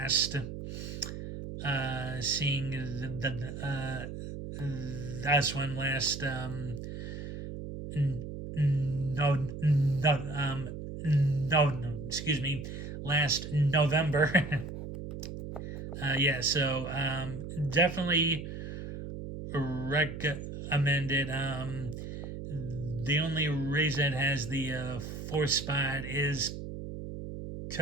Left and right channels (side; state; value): right; noise; hum, 8 dB below the sound